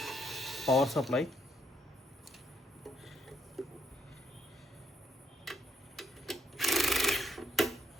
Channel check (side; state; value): both; normal; correlation 0.73